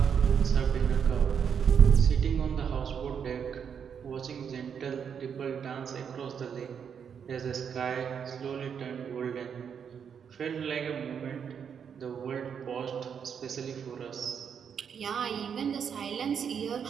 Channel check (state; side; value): quieter; left; 7.3 dB